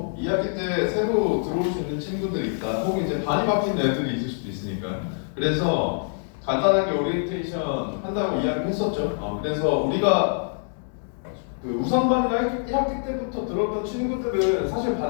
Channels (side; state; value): right; silent; 62 dB below the other